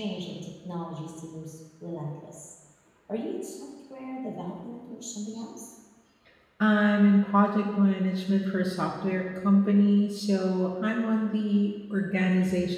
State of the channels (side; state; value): both; identical; correlation 1.00